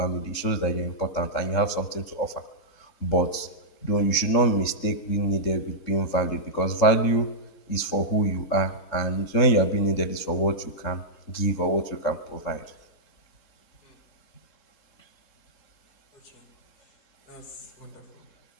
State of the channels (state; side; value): late; right; 3.7 ms